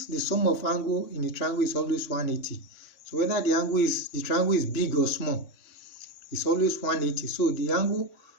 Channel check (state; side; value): late; right; 3.6 ms